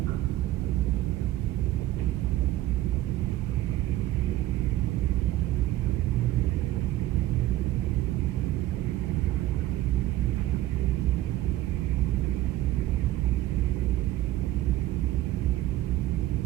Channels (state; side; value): quieter; left; 14.9 dB